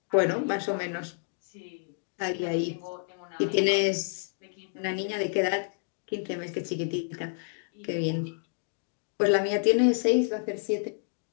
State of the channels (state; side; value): silent; right; digital silence